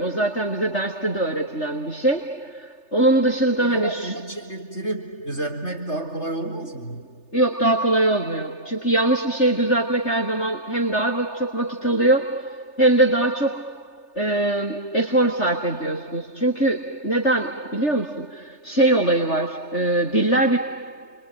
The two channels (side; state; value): right; late; 3.3 ms